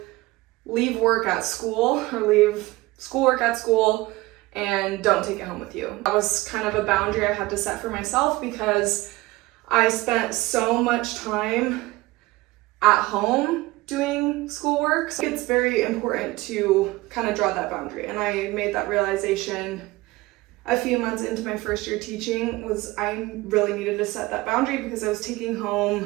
leave work at school or leave schoolwork at school and don't take it home with you. That was kind of a boundary I had to set for myself because I spent so much time at home doing schoolwork. So it's very important to kind of draw that boundary. And I made that realization a few months into my first year teaching was I really needed to set that boundary because I was taking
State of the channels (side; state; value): left; quieter; 20.2 dB